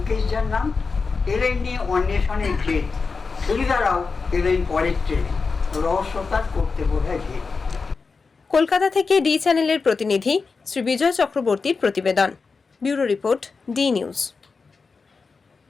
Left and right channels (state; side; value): quieter; right; 4.6 dB